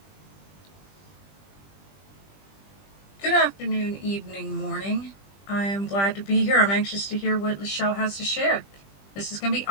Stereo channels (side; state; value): right; late; 20 ms